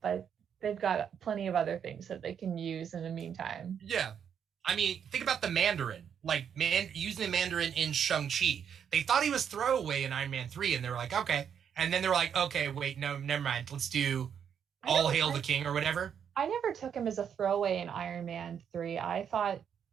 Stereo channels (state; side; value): quieter; left; 8.0 dB